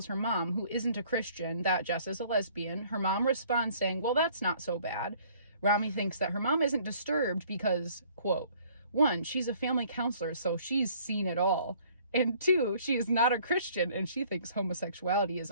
her mom, who isn't a Christian, that Jess is a lesbian. Her mom responds saying, well, that's not so bad. Rami thinks that her mom isn't disturbed because, quote, 1, she's a family counselor, so she's seen it all. And 2, she is not a Christian and she thinks homosexuality is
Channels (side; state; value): both; inverted; correlation -0.58